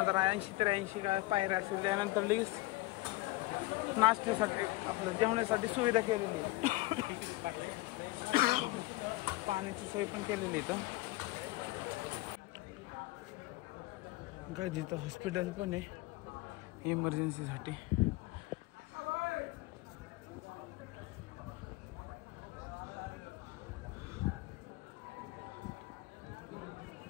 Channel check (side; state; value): right; quieter; 20.7 dB